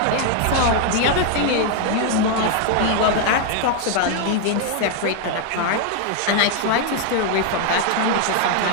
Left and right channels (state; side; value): different; both; correlation 0.00